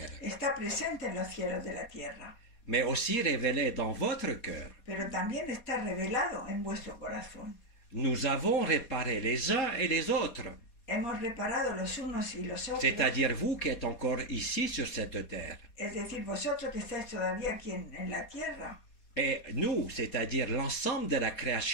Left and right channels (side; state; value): right; late; 4.2 ms